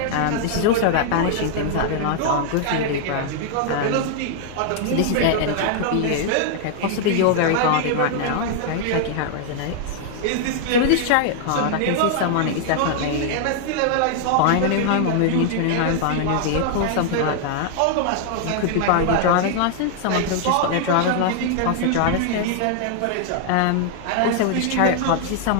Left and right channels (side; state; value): both; different; correlation -0.01